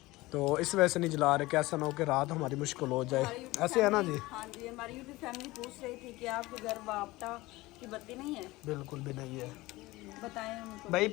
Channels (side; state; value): right; quieter; 19.9 dB